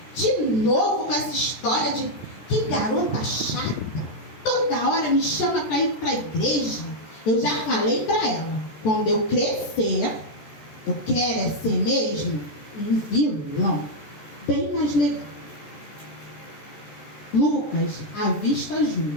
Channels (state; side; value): late; right; 13 ms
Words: de novo com essa história de que garota chata, toda hora me chama para ir para a igreja. Eu já falei para ela, quando eu crescer, eu quero é ser mesmo um vilão, bem mais legal. Lucas avista